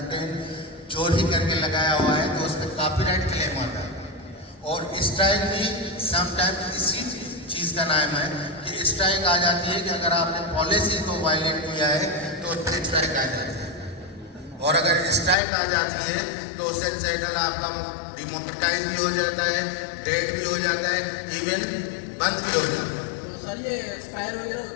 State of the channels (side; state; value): right; drops out; at 15.4 s